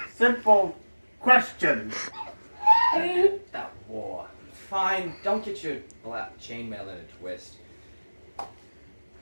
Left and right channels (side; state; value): both; inverted; correlation -1.00